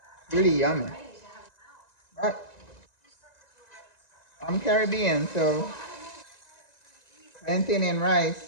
Really yummy. But I'm Caribbean, so plantain and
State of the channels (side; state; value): right; late; 1.9 ms